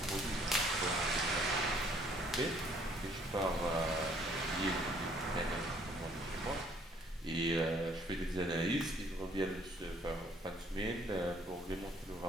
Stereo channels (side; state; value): both; normal; correlation 0.61